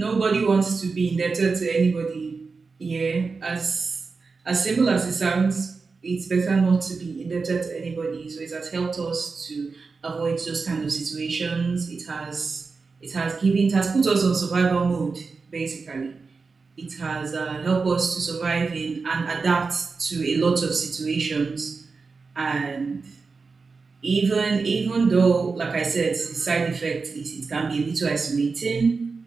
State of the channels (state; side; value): quieter; left; 4.5 dB